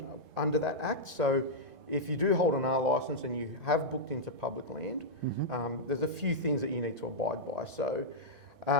under that act. So if you do hold an R licence and you have booked into public land, there's a few things that you need to abide by. So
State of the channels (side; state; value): left; late; 1.3 ms